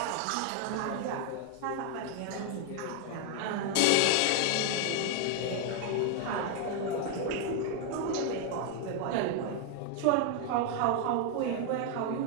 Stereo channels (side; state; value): both; different; correlation 0.01